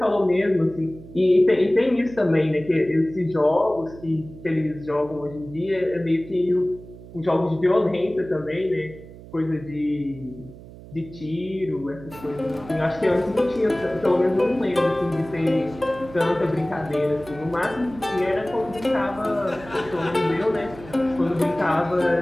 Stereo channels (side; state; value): right; noise; hum, 17 dB below the sound